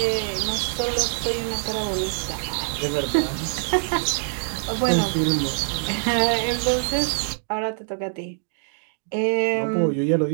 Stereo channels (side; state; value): left; silent; digital silence